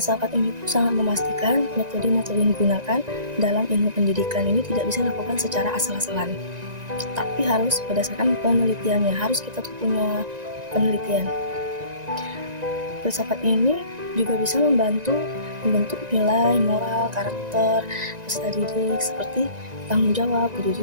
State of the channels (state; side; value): late; left; 1.9 ms